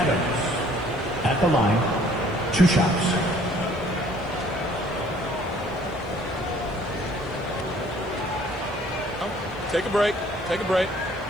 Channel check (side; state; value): left; noise; hiss, 30 dB below the sound